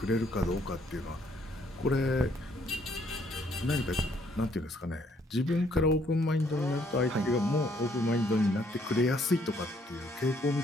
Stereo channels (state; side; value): normal; both; correlation 0.67